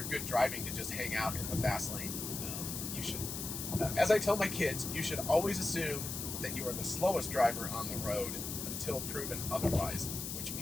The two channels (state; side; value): noise; left; hiss, 5 dB below the sound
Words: good driving, to just hang out in the fast lane. You should, as I tell my kids, you should always assume that you are the slowest driver on the road until proven otherwise, which